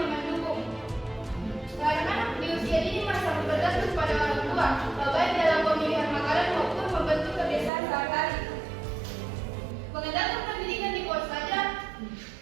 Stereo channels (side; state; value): left; drops out; at 7.7 s